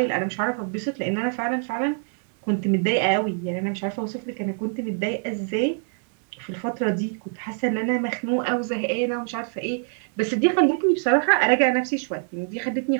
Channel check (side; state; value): left; silent; 57 dB below the other